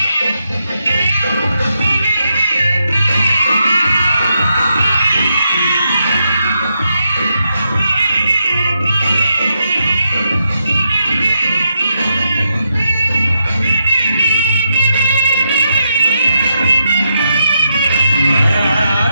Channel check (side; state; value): both; inverted; correlation -0.83